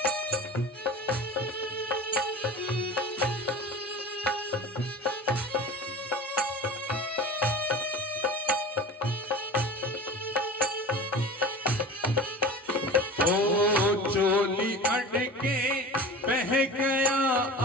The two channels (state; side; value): normal; both; correlation 0.34